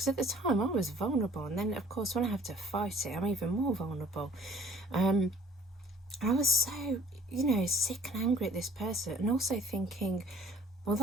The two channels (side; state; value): both; normal; correlation 0.54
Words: at the time I was vulnerable, and then of course when I have to fight it, I'm even more vulnerable. I was so, you know, sick and angry at this person, and also thinking, well,